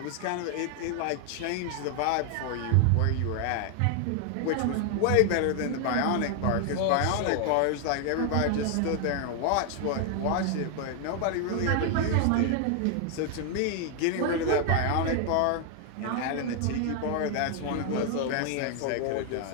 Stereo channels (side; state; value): both; different; correlation 0.00